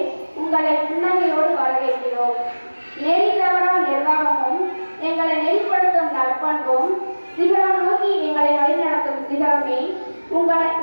உங்களை புன்னகையோடு வரவேற்கிறோம். நெறி தவறா நிர்வாகமும் எங்களை நெறிப்படுத்தும் நற்பண்பும் சிகரம் நோக்கி எங்களை வழிநடத்தும் சிகரமே,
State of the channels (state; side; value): inverted; both; correlation -1.00